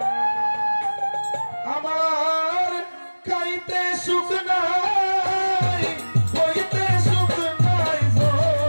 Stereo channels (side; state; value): both; inverted; correlation -1.00